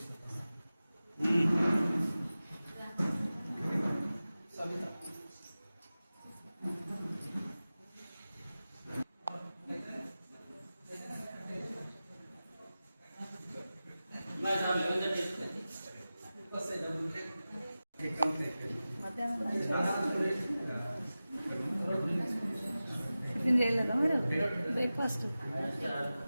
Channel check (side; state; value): both; inverted; correlation -0.95